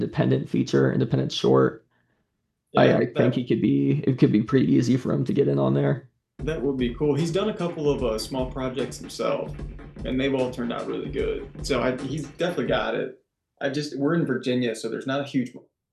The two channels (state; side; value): identical; both; correlation 1.00